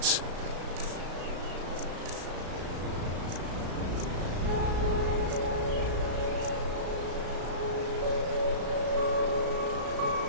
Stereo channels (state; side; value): late; left; 35 ms